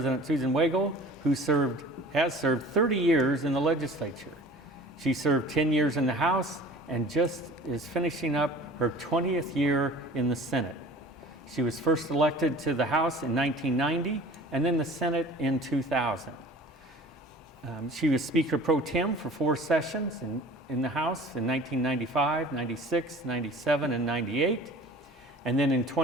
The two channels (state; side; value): normal; both; correlation 0.44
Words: Susan Wagle, who has served 30 years in the legislature. She served 10 years in the House and just is finishing up her 20th year in the Senate. She was first elected to the House in 1990 and then the Senate in 2000. She was Speaker Pro Tem for 4 sessions in the House in 1995, 96, 97, and 98. And then in